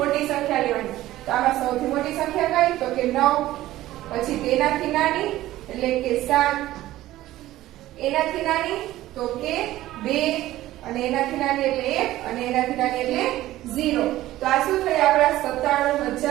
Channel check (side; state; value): left; quieter; 15.3 dB